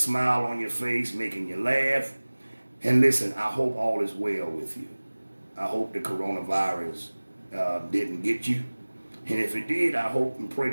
on your face, making you laugh. And listen, I hope all is well with you. I hope the coronavirus didn't get you. And if it did, I hope and pray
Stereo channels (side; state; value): both; inverted; correlation -1.00